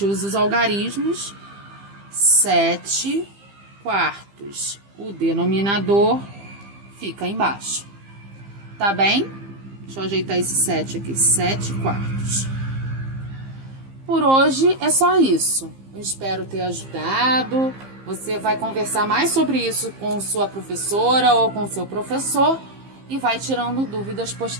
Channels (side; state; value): left; late; 15 ms